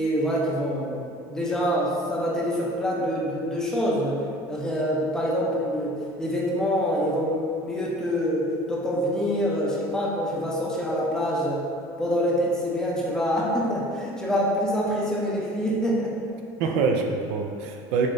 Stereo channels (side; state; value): both; normal; correlation 0.46